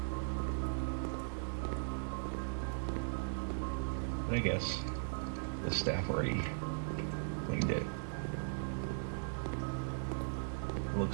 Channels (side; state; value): left; silent; digital silence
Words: But I guess the staff already cleaned it.